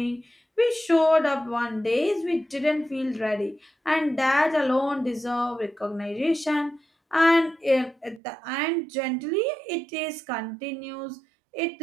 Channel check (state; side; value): drops out; left; at 8.2 s